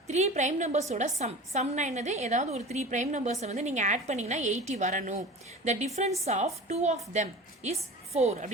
3 prime numbers ஓட sumனா என்னது? ஏதாவது ஒரு 3 prime numbers வந்து நீங்க ஆட் பண்ணீங்கன்னா 80 வரணும். The difference of two of them is 4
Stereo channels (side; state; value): both; normal; correlation 0.36